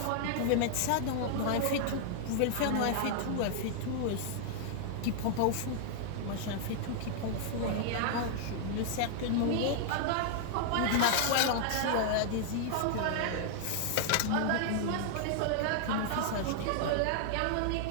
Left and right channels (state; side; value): different; both; correlation -0.01